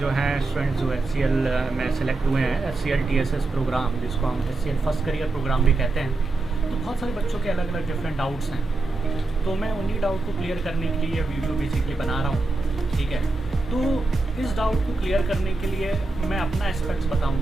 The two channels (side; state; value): left; quieter; 3.2 dB